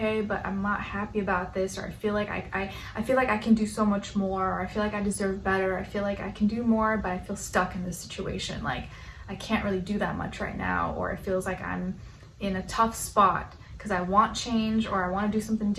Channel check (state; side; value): identical; both; correlation 1.00